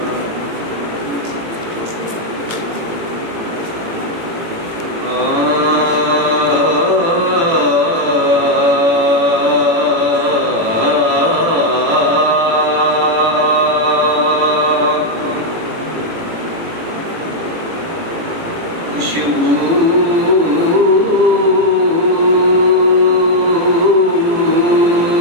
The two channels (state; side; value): late; left; 18 ms